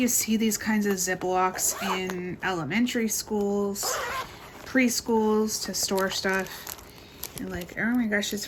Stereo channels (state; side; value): identical; both; correlation 1.00